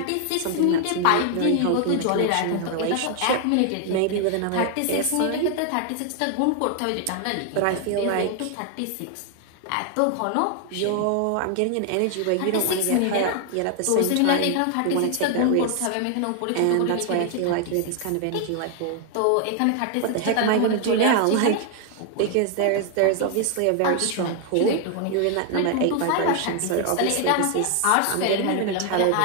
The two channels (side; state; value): both; different; correlation 0.00